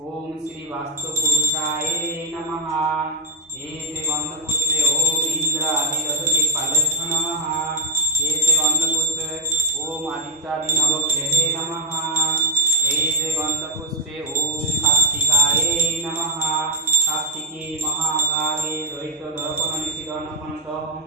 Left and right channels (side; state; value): both; normal; correlation 0.11